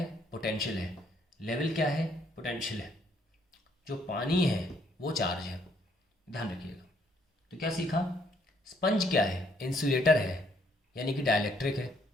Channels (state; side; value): normal; both; correlation 0.68